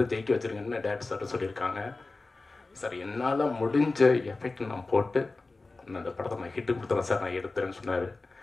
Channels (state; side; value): quieter; right; 3.5 dB